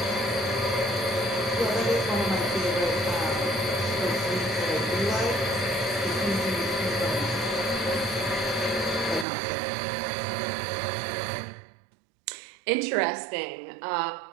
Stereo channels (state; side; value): drops out; left; at 9.2 s